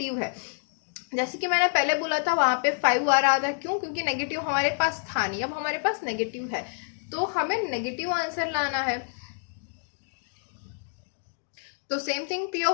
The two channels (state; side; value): silent; right; digital silence